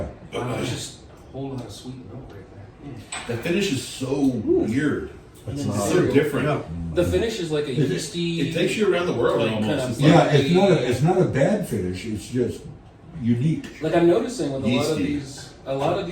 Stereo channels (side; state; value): both; identical; correlation 1.00